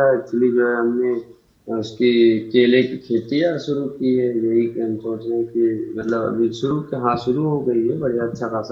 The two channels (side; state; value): both; identical; correlation 1.00